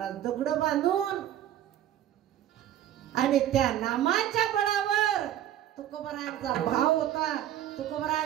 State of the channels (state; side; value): quieter; left; 11.7 dB